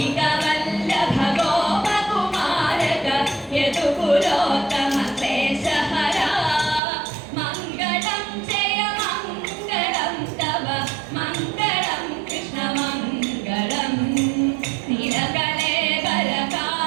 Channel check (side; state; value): left; drops out; at 6.8 s